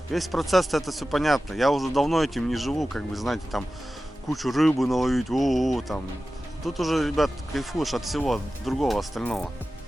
весь процесс-то, это все понятно. Я уже давно этим не живу, как бы, знаете, там, кучу рыбы наловить, там. Тут уже, ребят, кайфуешь от всего другого, остального.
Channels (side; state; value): both; normal; correlation 0.95